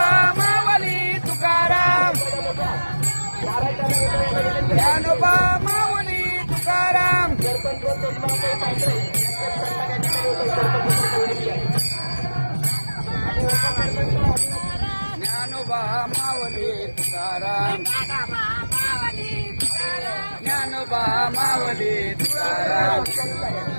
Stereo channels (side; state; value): both; inverted; correlation -1.00